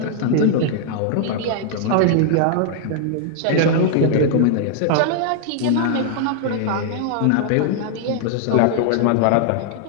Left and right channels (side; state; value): both; different; correlation 0.00